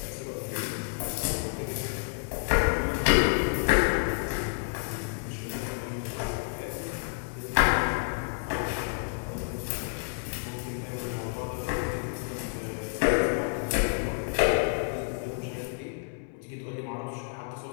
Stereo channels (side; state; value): right; silent; 58 dB below the other